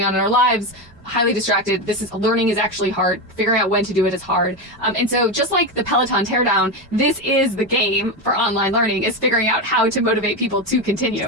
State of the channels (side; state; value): both; normal; correlation 0.14